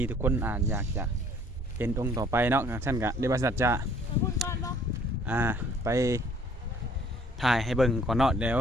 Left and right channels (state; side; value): normal; both; correlation 0.58